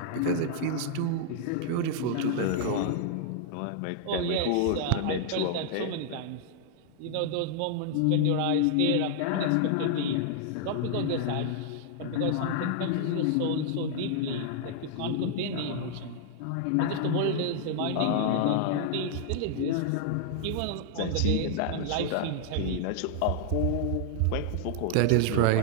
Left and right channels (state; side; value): different; both; correlation 0.00